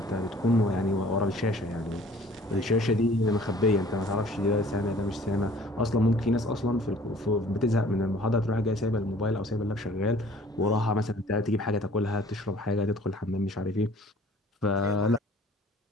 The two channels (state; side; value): normal; both; correlation 0.53